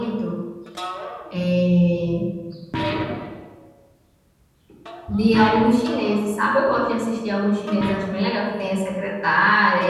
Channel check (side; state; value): both; identical; correlation 1.00